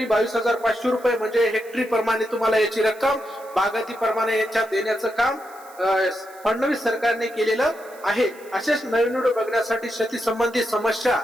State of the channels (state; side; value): noise; right; hiss, 24 dB below the sound